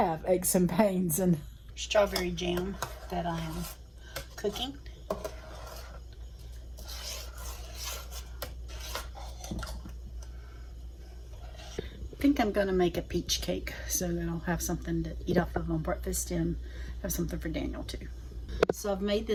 aches and pains. And strawberry jam that I am cooking. I think I'm going to make a peach cake so that I'll have something to eat off of on breakfast and have something for Daniel too. So I've made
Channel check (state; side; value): identical; both; correlation 1.00